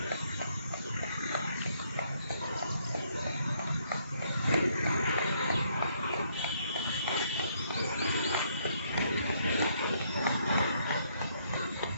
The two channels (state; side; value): inverted; both; correlation -0.70